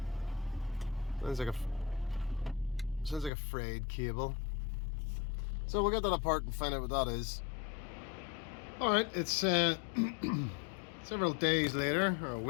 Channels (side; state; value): right; drops out; at 3.3 s